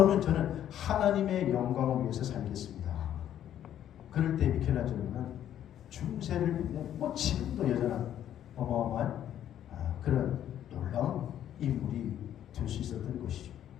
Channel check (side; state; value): right; quieter; 10.8 dB